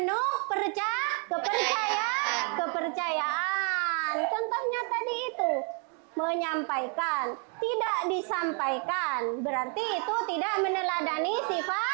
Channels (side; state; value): left; quieter; 39.5 dB